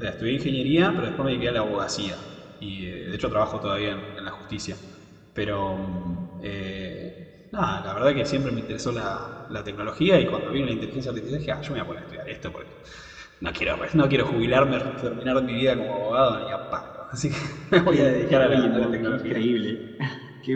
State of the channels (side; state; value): both; identical; correlation 1.00